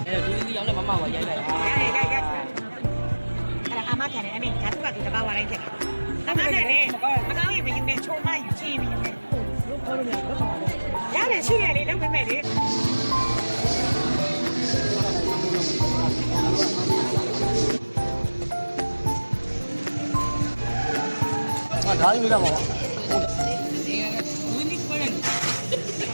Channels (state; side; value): inverted; both; correlation -1.00